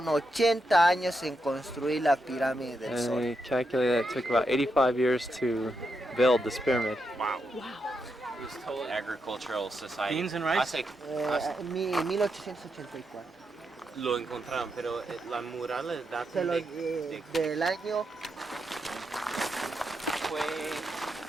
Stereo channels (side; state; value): both; normal; correlation 0.84